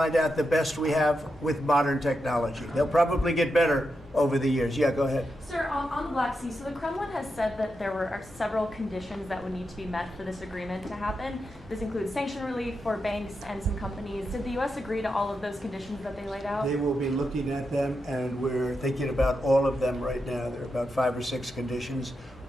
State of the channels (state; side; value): normal; both; correlation 0.86